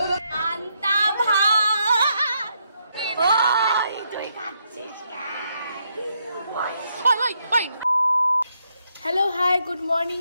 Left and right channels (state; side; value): inverted; both; correlation -0.77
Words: ভাত। ওই তুই খাচ্ছিস কেন? Hello hi good morning